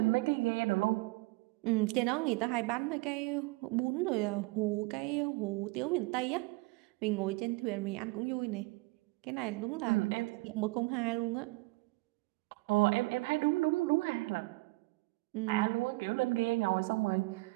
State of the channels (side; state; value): left; quieter; 24.5 dB